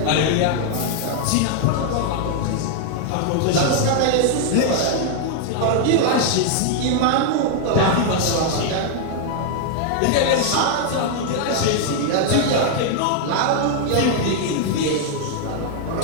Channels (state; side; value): different; both; correlation 0.00